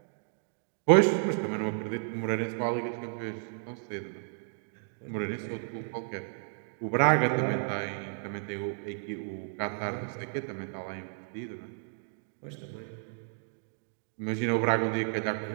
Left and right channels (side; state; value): left; silent; digital silence